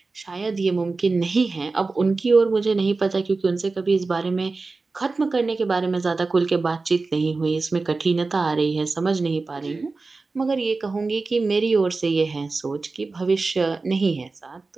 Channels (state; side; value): quieter; left; 3.8 dB